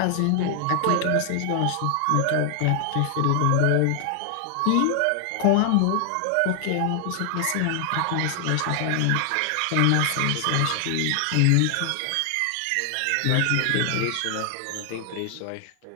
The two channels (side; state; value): both; different; correlation 0.00